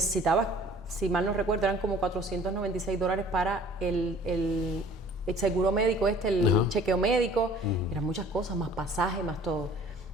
si mal no recuerdo, eran como $496 para el seguro médico el chequeo médico, eran muchas cosas, más pasaje, más todo.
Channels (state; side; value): normal; both; correlation 0.51